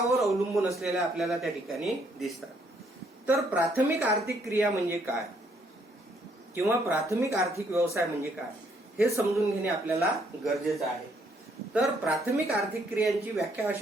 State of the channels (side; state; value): both; normal; correlation 0.69